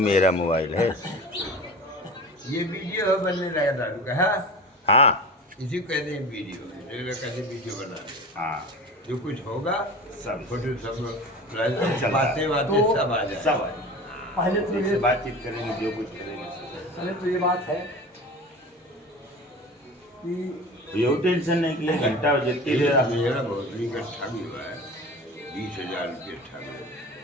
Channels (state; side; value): normal; both; correlation 0.35